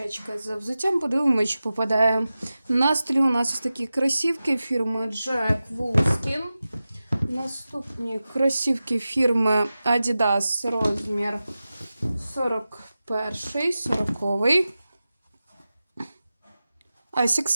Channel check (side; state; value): both; inverted; correlation -0.94